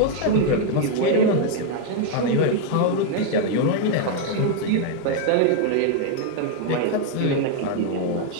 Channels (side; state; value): both; different; correlation 0.00